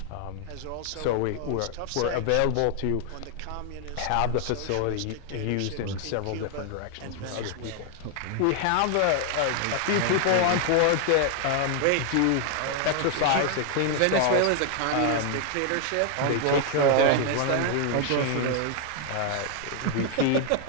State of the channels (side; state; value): both; different; correlation 0.00